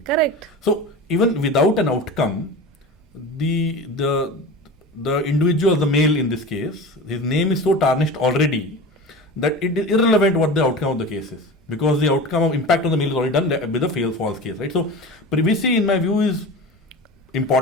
Correct. So even without an outcome, the individual, the male in this case, his name is so tarnished already that it is irrelevant what the outcome of the case is, because the outcome of impact on the male is already done with a false case, right? So privacy, in my view, is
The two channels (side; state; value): both; normal; correlation 0.31